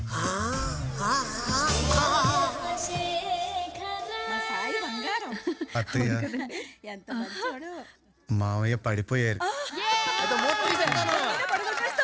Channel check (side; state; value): both; identical; correlation 1.00